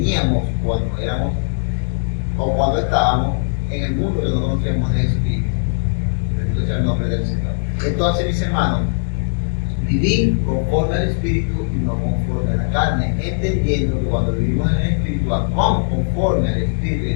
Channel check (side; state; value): right; silent; 63 dB below the other